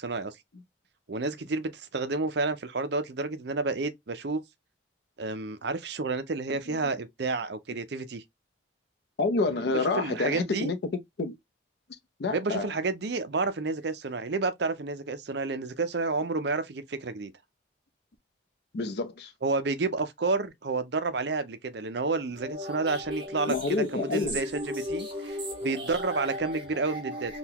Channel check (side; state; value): both; normal; correlation -0.05